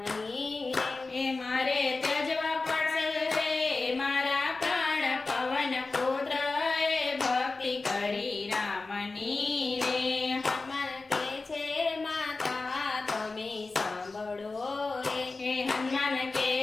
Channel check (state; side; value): quieter; right; 3.7 dB